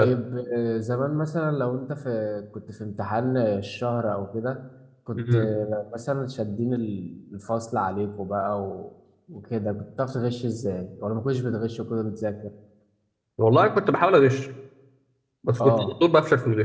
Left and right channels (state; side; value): identical; both; correlation 1.00